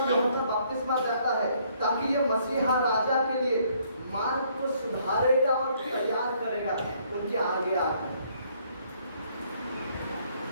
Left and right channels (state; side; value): inverted; both; correlation -0.66